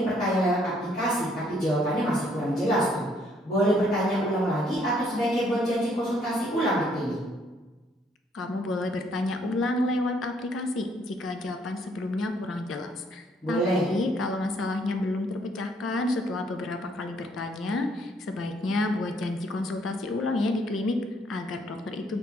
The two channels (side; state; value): both; normal; correlation 0.67